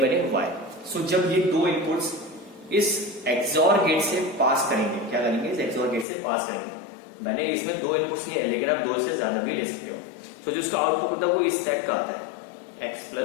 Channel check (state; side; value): drops out; right; at 6.1 s